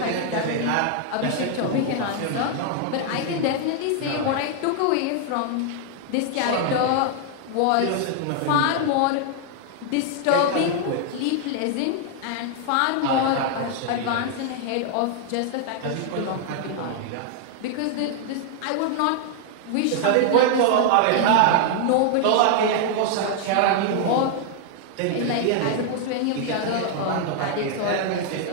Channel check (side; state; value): both; different; correlation 0.00